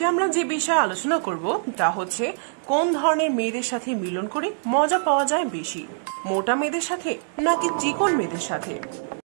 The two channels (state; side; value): silent; left; digital silence